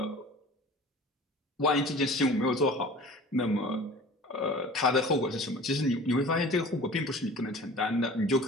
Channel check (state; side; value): normal; both; correlation 0.42